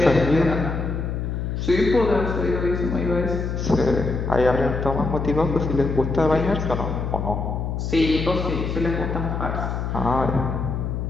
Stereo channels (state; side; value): noise; left; hum, 3 dB below the sound